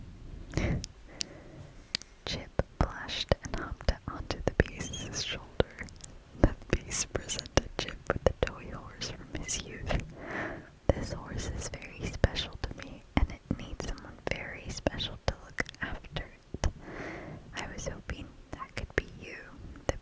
Chip blushed and hopped onto the Beast's shoulder. The Beast presented Chip with the toy horse from his youth. "This horse is very special to me, and it needs someone very special to look after it. I was hoping that could be you," the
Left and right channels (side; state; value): both; identical; correlation 1.00